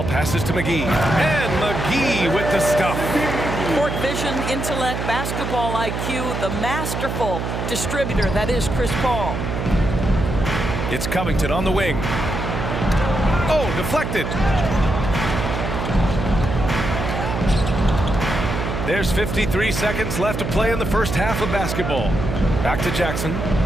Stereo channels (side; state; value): right; noise; hum, 3 dB below the sound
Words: passes to McGee. And McGee with the stuff. Court vision, intellect, basketball IQ, the masterful distributor that is Chris Paul. It's Covington on the wing. Oh, deflected. There's 53 seconds left to play in the first half of basketball. Back to Jackson.